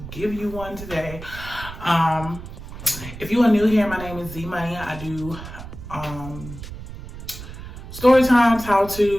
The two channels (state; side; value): noise; right; rumble, 12 dB below the sound